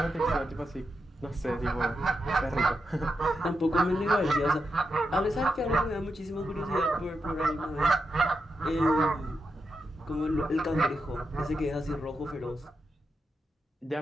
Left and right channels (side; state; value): both; normal; correlation 0.86